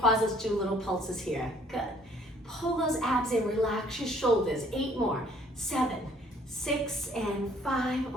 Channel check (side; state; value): both; normal; correlation 0.59